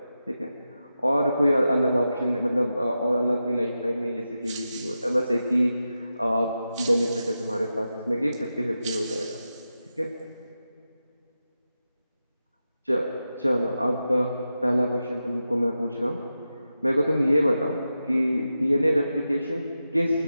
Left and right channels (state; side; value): inverted; both; correlation -0.90